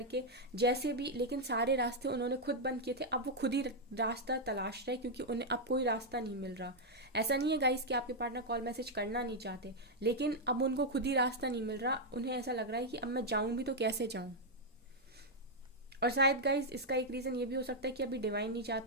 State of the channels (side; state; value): both; normal; correlation -0.02